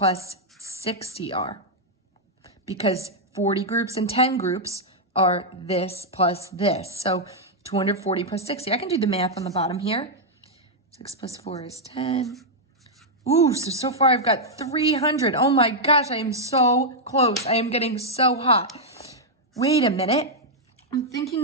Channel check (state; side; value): normal; both; correlation -0.04